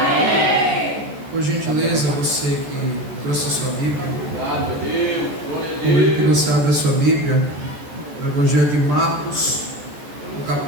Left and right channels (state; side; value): late; left; 14 ms